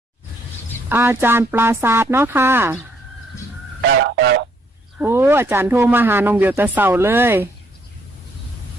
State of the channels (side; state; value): both; normal; correlation 0.69